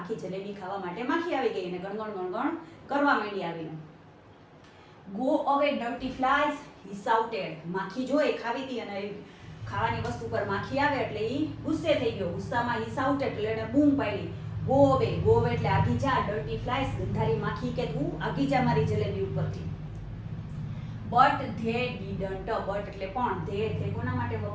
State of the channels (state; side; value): identical; both; correlation 1.00